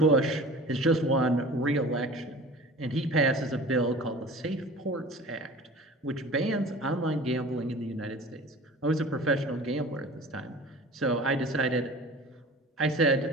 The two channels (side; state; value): both; normal; correlation 0.40